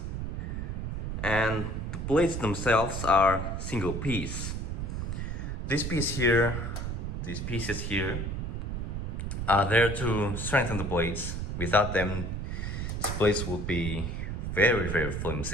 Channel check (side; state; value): right; noise; rumble, 3 dB below the sound